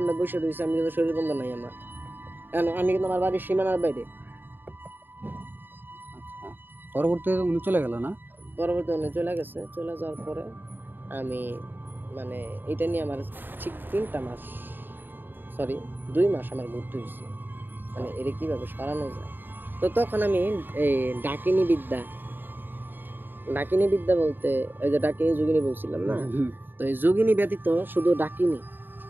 বসে রয়েছি, আমি কিন্তু শরীর বন্ধ নাই আমার, কারণ আমি কিন্তু আমার বাড়ির সীমানার বাইরে। আচ্ছা, পরবর্তীতে উনি চলে গেল না? পরবর্তী উনি চলে গেছে। চলে যাওয়ার পরে আমি মানে এটা নিয়ে আমার ঠিক 2 মাস আমার ঘুরতে হয়েছে, মানে এটা কিভাবে সরানো যায়। তো তখন আমি এই ডাকিনী বিদ্যা বলতে ওই যে ডাকিনী যোগিনী বলছিলাম না, তো এই যোগিনী ব্যতীত শুধু ডাকিনী,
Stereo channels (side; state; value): left; late; 0.094 ms